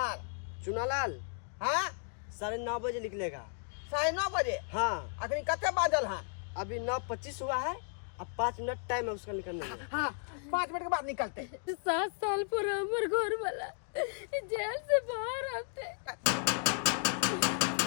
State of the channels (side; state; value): right; silent; 55 dB below the other